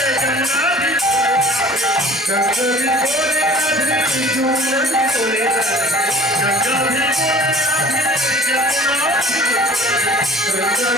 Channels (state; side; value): normal; both; correlation 0.47